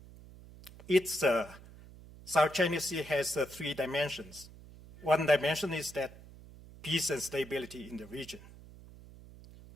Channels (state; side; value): noise; right; hum, 19 dB below the sound